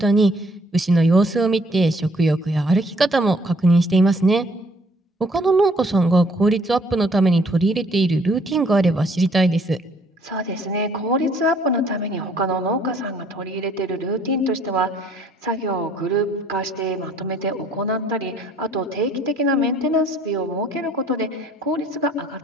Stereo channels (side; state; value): both; normal; correlation 0.62